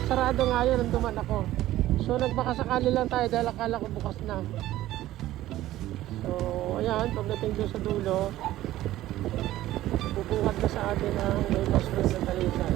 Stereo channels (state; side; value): quieter; left; 14.9 dB